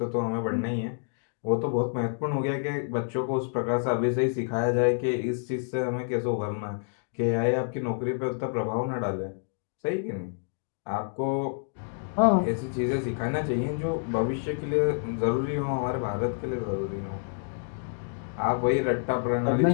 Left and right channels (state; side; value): silent; right; digital silence